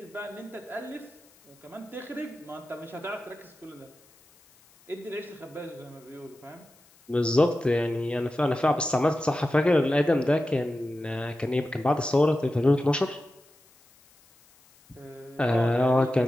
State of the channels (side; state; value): left; noise; hiss, 29 dB below the sound